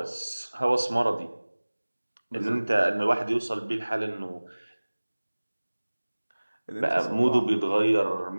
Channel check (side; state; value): both; inverted; correlation -1.00